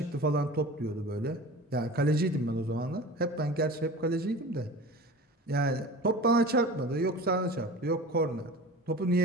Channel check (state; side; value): normal; both; correlation 0.36